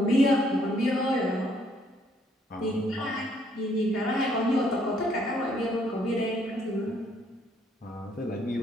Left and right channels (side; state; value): both; normal; correlation 0.67